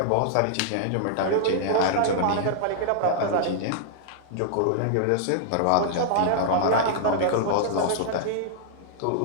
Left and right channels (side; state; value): both; different; correlation -0.01